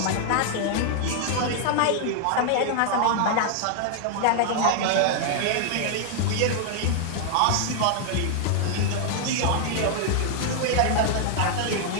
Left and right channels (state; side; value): different; both; correlation 0.00